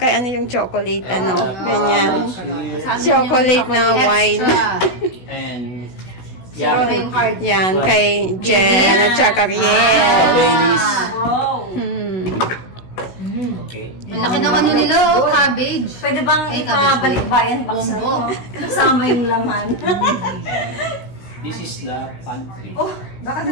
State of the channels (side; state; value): right; late; 16 ms